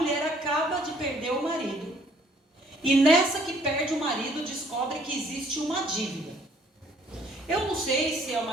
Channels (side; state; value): both; normal; correlation 0.62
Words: acaba de perder o marido, e nessa que perde o marido, descobre que existe uma dívida. Eu não sei se é